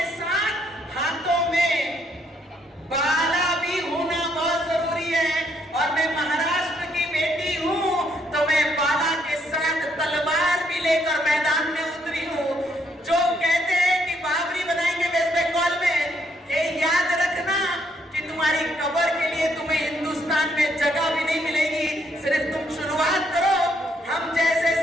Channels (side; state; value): both; normal; correlation 0.72